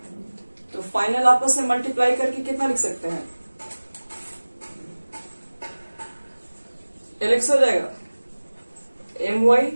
तो फाइनल आपस में मल्टीप्लाई करके कितना लिख सकते हैं, एल एक्स हो जाएगा M Y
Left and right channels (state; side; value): inverted; both; correlation -1.00